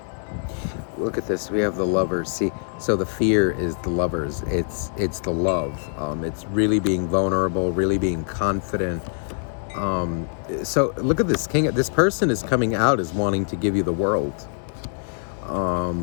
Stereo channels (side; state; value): right; silent; 61 dB below the other